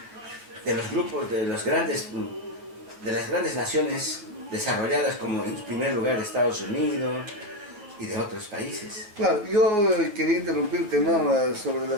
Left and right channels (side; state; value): left; late; 9.6 ms